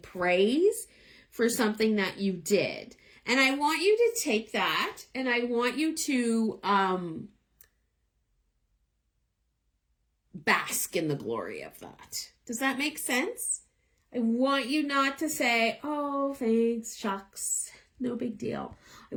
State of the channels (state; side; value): identical; both; correlation 1.00